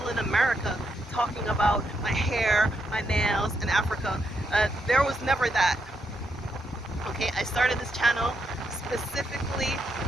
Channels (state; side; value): normal; both; correlation 0.80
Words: in America talking about my hair, my nails, and Africa. There was never that. Okay, I started this channel specifically,